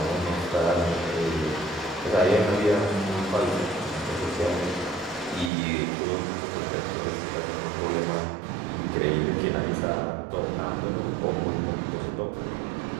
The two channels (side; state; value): left; drops out; at 5.5 s